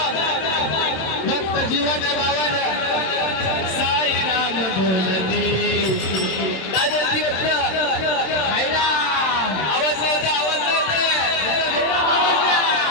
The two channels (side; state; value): right; late; 26 ms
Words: भक्त जीवन बाबा साई राम बोलते काय बोलती बोलते आवाज नव्हता